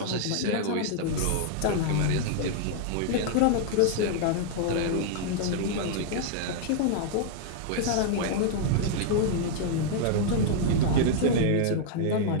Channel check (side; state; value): both; different; correlation -0.01